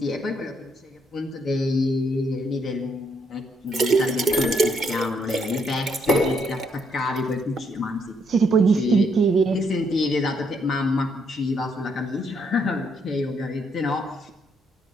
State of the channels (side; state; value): both; normal; correlation 0.73